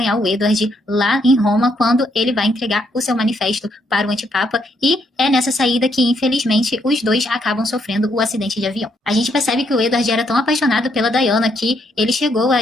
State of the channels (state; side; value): normal; both; correlation 0.74